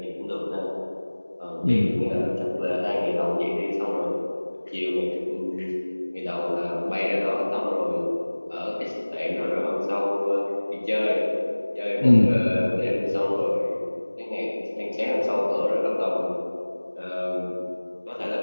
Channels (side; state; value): both; inverted; correlation -1.00